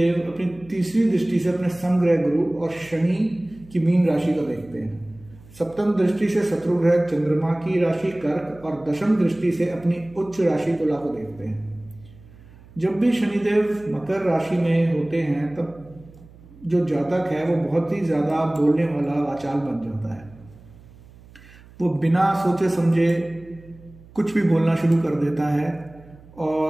अपनी तीसरी दृष्टि से अपने समग्रह गुरु और शनि की मीन राशि को देखते हैं। सप्तम दृष्टि से शत्रु ग्रह चंद्रमा की राशि कर्क और दशम दृष्टि से अपनी उच्च राशि तुला को देखते हैं। जब भी शनिदेव मकर राशि में होते हैं तब जो जातक है वो बहुत ही ज्यादा बोलने वाला वाचाल बन जाता है। वो बिना सोचे समझे कुछ भी बोलना शुरू कर देता है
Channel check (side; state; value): right; noise; hum, 23 dB below the sound